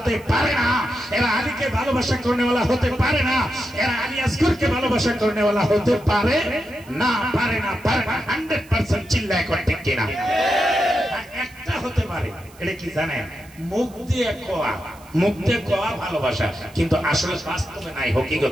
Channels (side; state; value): right; noise; hiss, 25 dB below the sound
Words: পারে না, এরা আলীকে ভালোবাসা করনেওয়ালা হতে পারে না, এরা আলী আসগরকে ভালোবাসা করনেওয়ালা হতে পারে না, পারে না, পারে না। 100% চিল্লায় কোন ঠিক কিনা? একটা হতে পারে, এটা কি জানেন? মুখ দিয়ে কোয়া, মুখ দিয়ে কোয়া ভালোবাসা, কিন্তু আসলে বাস্তবে নাই,